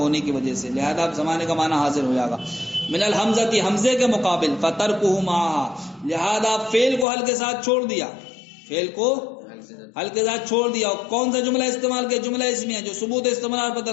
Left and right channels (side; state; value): right; drops out; at 7.1 s